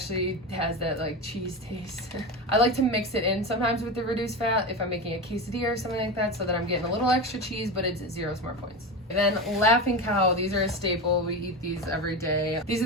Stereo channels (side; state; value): both; normal; correlation 0.22